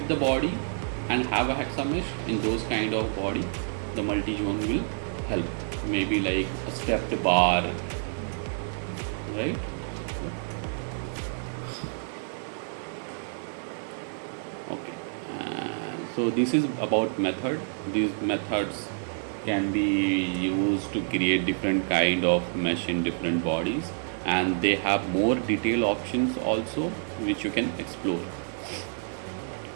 the body and have a hexa mesh, in those kind of body the multi-zone will help. Maybe like a stepped bar, right? Okay, so this is about method. These methods can be used to create different kind of mesh in different bodies, and they have more detailed options also which you can explore.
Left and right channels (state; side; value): silent; left; digital silence